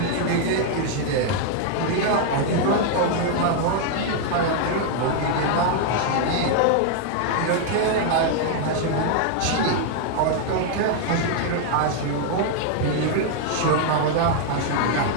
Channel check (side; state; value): both; different; correlation 0.00